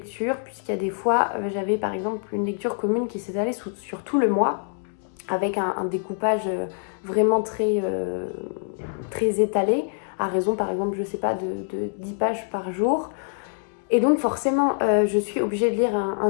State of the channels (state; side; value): silent; right; digital silence